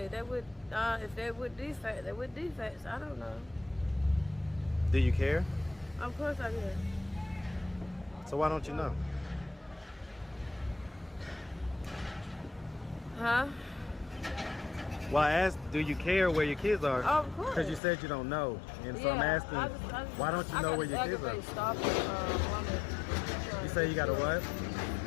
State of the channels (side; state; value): right; drops out; at 17.8 s